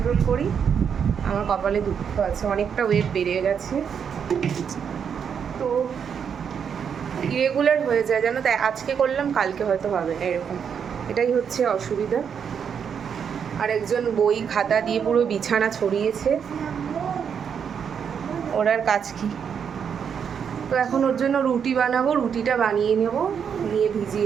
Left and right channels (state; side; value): quieter; left; 7.3 dB